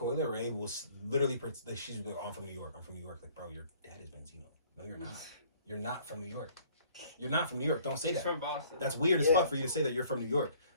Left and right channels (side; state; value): both; inverted; correlation -0.57